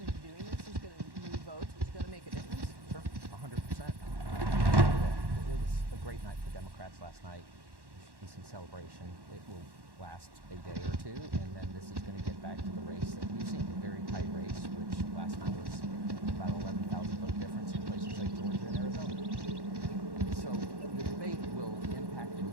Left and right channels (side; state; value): left; late; 1.1 ms